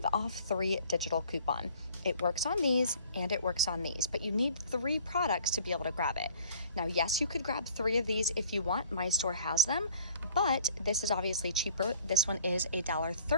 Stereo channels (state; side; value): inverted; both; correlation -0.52